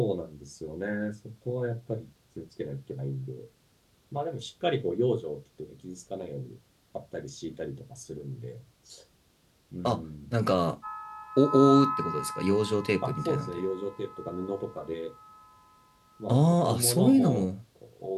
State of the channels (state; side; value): identical; both; correlation 1.00